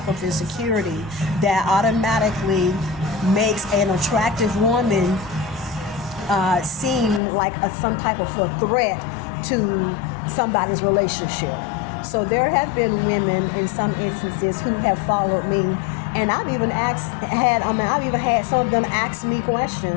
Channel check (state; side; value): drops out; right; at 7.2 s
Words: of insecurity that automatically makes an attractive woman seem like some type of a threat to somebody's relationship. So there have been women in some instances who have followed me, and I've even had some of them ask me